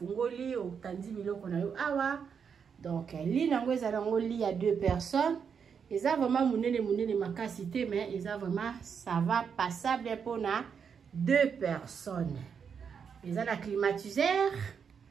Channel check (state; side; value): quieter; left; 6.7 dB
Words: otandi biloko na yo awa. Donc lit nango eza nango lit ya 2 personnes. Eza vraiment munene makasi te mais eza vraiment ça va passable pour na 2 personnes. Eza na climatiseur.